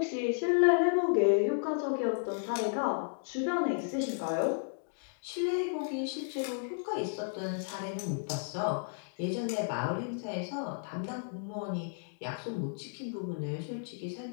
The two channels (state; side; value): silent; right; digital silence